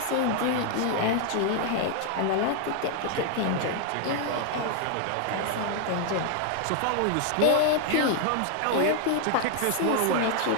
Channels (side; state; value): both; different; correlation 0.00